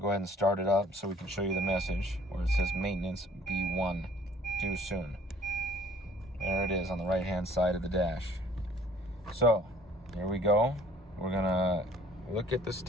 go ahead and start it up so we can show you the message where it says maintenance B1, due soon. There it is on the right hand side of the dash. So here we go. We're gonna look at the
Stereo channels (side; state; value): both; normal; correlation 0.55